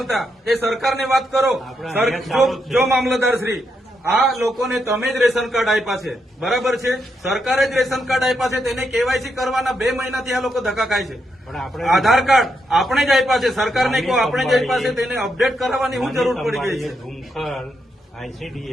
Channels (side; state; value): both; normal; correlation 0.81